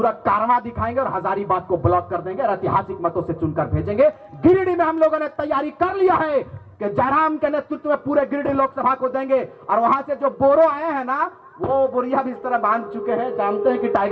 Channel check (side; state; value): both; identical; correlation 1.00